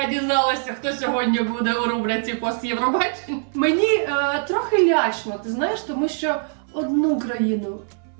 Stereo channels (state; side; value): silent; left; 64 dB below the other